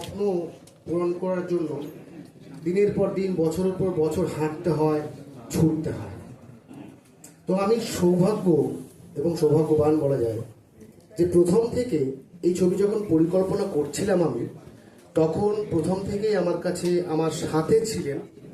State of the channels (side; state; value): both; identical; correlation 1.00